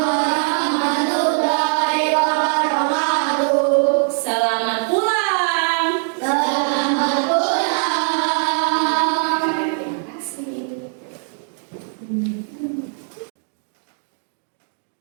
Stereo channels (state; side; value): silent; left; 60 dB below the other